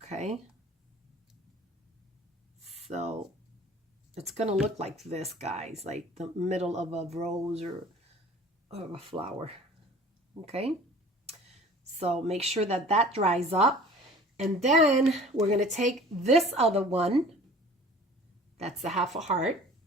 Okay, so it's gonna look like this, guys, like the middle of a rose or a flower. Okay, so make sure that that dries up, and then we're going to take this other one, that's the half a heart,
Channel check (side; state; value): both; normal; correlation 0.46